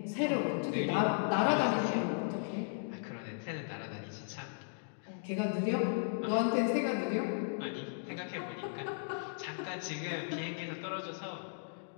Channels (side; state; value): right; silent; digital silence